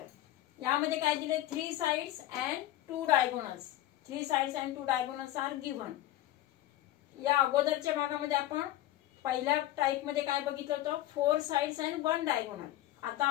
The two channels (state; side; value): quieter; right; 14.4 dB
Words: यामध्ये काय दिले, 3 sides and 2 diagonals. 3 sides and 2 diagonals are given. या अगोदरच्या भागामध्ये आपण पहिल्या टाइप मध्ये काय बघितलं होतं, 4 साइड्स अँड 1 डायगोनल. आता